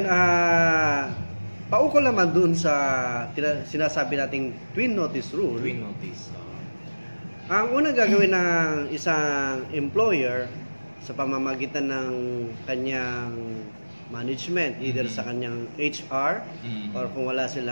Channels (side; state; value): both; inverted; correlation -1.00